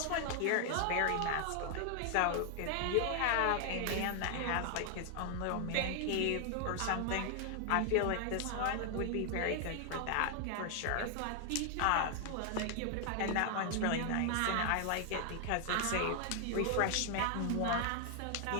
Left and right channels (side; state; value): both; different; correlation 0.00